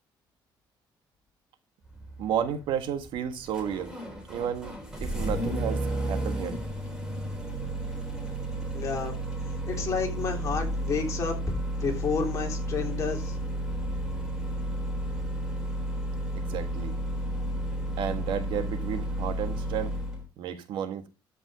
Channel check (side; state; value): both; normal; correlation 0.45